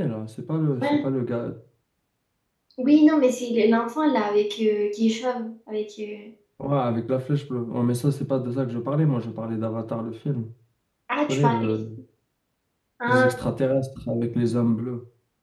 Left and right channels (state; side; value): identical; both; correlation 1.00